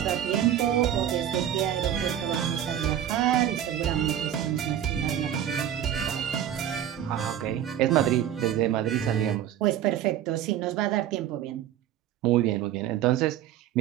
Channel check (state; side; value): quieter; left; 10.7 dB